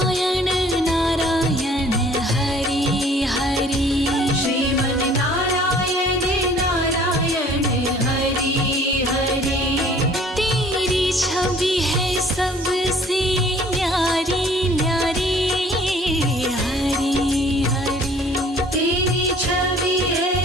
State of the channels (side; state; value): both; normal; correlation 0.54